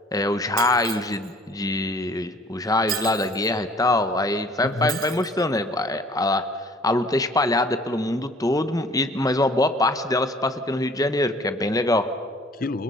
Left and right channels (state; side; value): normal; both; correlation 0.53